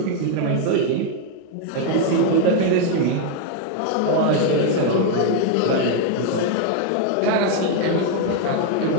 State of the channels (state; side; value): different; both; correlation 0.01